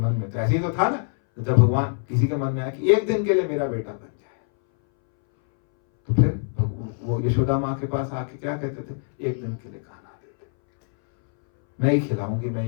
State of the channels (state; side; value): silent; right; 62 dB below the other